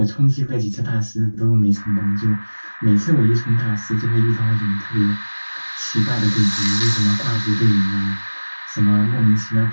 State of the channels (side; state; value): both; inverted; correlation -1.00